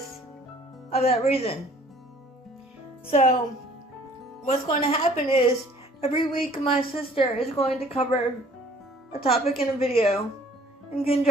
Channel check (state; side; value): normal; both; correlation 0.54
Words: of that reason. So what's going to happen is every week my sister is going to cover a topic in a video in